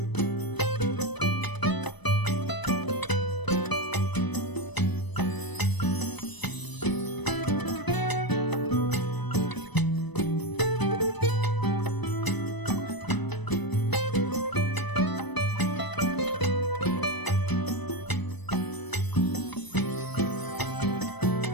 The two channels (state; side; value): late; right; 1.0 ms